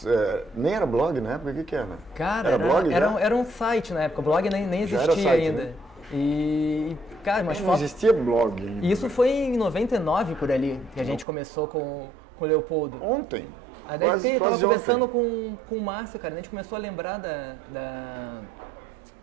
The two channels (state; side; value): drops out; left; at 11.2 s